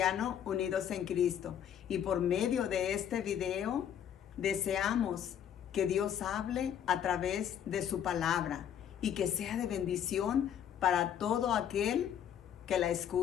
Unidos en Cristo. Y por medio de este video deseamos que Dios hable a través de su palabra y que sea de bendición para todo aquel que la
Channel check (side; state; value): right; quieter; 9.4 dB